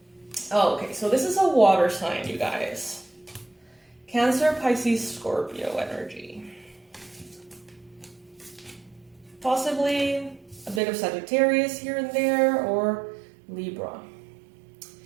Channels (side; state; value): left; drops out; at 10.8 s